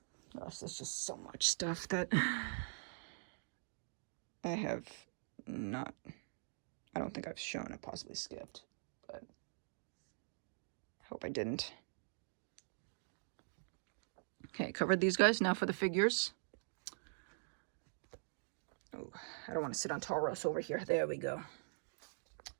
Gosh, there's just so much stuff that I have not, I don't think I've shown. I possibly skipped, but I hope I didn't. Okay, covered these guys. Now for the figures. Oh, I don't want to sit on Tauros over here. There we go.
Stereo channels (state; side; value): silent; left; digital silence